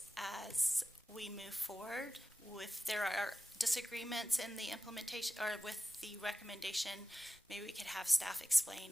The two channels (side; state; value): both; normal; correlation 0.94